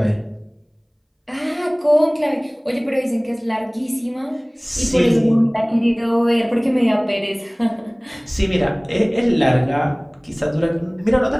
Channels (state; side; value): identical; both; correlation 1.00